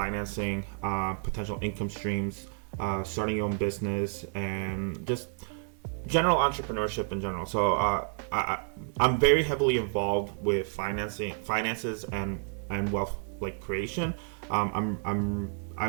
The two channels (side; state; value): left; silent; 56 dB below the other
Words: potential income streams, starting your own business, and just general entrepreneurship in general. So I'm very heavily involved with finances, and wealth creation.